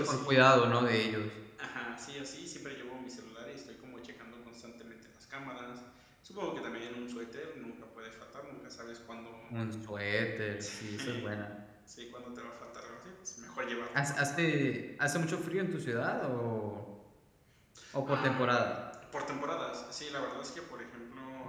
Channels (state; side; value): identical; both; correlation 1.00